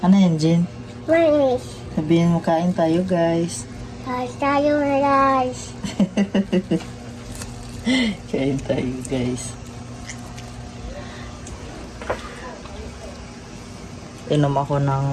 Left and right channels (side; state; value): both; identical; correlation 1.00